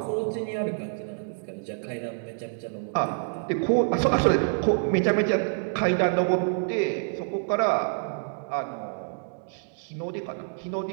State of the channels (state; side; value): silent; left; digital silence